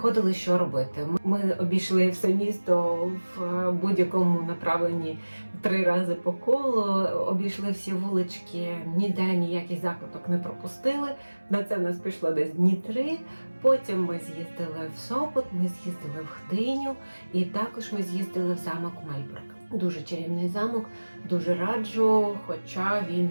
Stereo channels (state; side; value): inverted; both; correlation -1.00